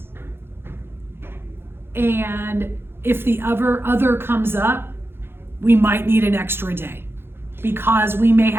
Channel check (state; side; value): late; left; 0.11 ms